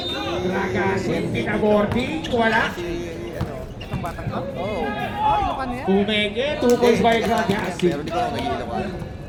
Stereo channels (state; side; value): identical; both; correlation 1.00